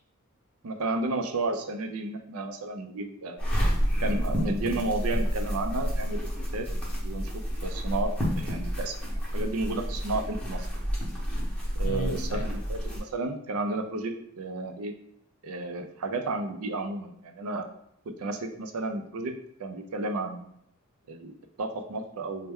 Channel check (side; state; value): both; normal; correlation 0.49